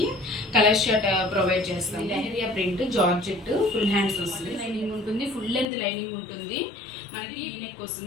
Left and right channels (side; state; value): right; drops out; at 5.7 s